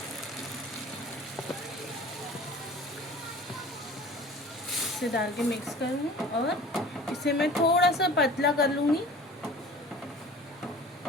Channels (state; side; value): normal; both; correlation 0.43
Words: इसे डाल के मिक्स करूँगी और इसे मैं थोड़ा सा पतला कर लूँगी।